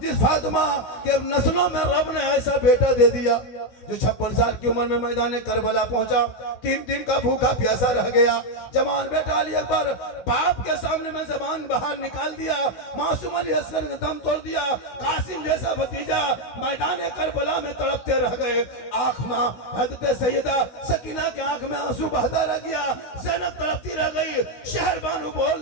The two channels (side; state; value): right; late; 16 ms